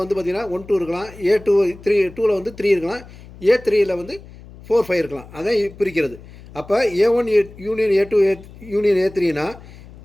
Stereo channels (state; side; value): noise; left; hum, 19 dB below the sound